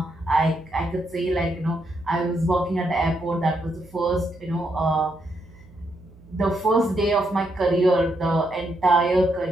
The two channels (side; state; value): right; noise; hum, 24 dB below the sound